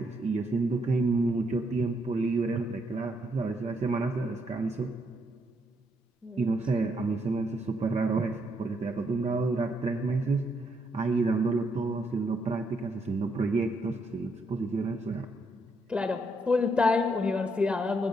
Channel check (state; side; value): normal; both; correlation 0.76